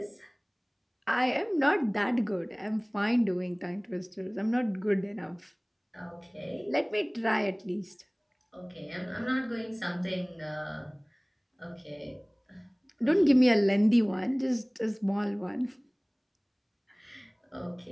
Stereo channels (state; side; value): identical; both; correlation 1.00